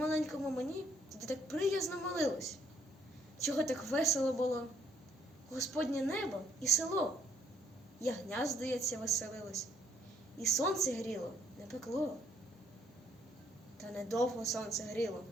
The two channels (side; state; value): both; normal; correlation 0.67